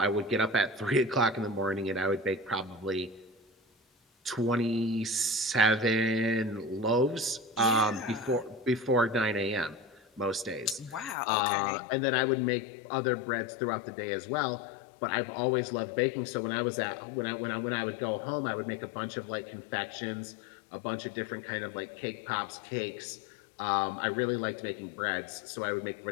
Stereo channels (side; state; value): right; drops out; at 11.2 s